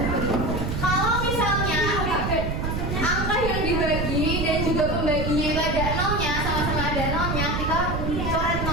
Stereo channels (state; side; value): noise; right; rumble, 1 dB below the sound